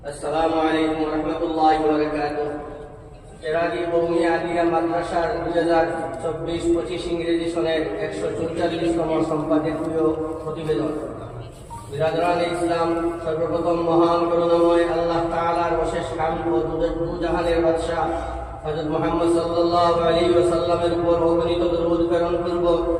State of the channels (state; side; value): identical; both; correlation 1.00